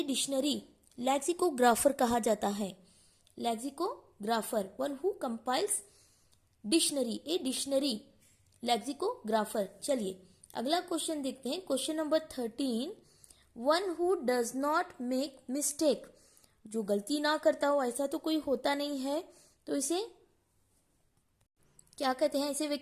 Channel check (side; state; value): both; identical; correlation 1.00